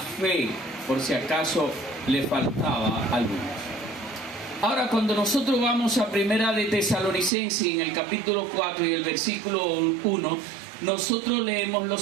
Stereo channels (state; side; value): drops out; left; at 7.3 s